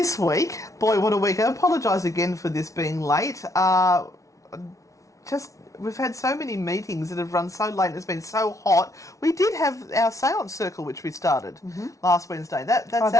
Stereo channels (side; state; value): right; late; 0.16 ms